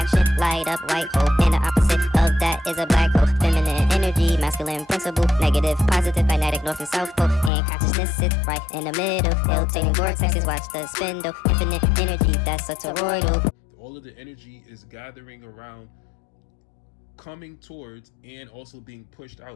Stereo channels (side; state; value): right; drops out; at 7.5 s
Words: light up white hole, and the opposite of that is a black hole. Feminine energy, masculine principle, negative, positive, magnetic, north and south pole, and consciousness sits right in the middle. Rotating vortexes, watch the spindle, infinite energy, that's a toroidal. All of the energy is gathering around, coming towards, and also being pushed